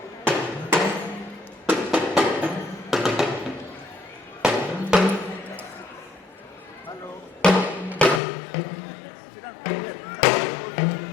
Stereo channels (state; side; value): drops out; right; at 8.2 s